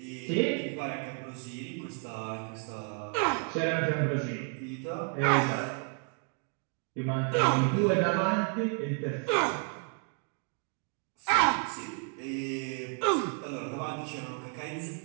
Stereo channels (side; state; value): left; quieter; 38.4 dB